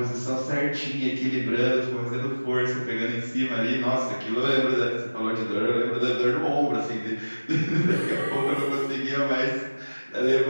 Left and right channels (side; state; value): both; inverted; correlation -1.00